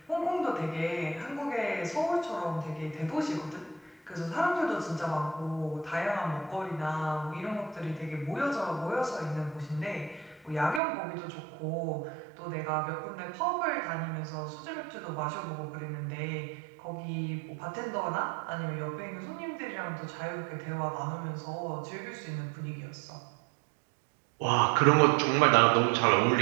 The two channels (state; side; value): drops out; left; at 10.8 s